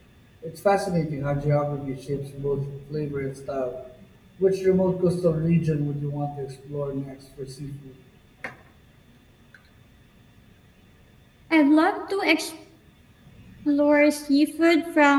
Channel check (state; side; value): identical; both; correlation 1.00